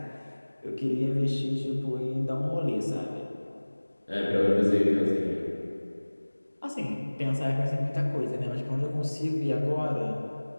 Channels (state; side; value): inverted; both; correlation -1.00